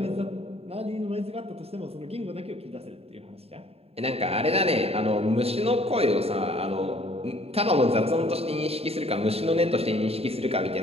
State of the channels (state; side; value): late; left; 0.29 ms